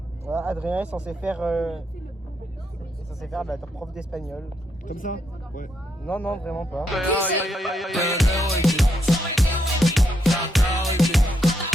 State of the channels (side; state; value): both; normal; correlation 0.78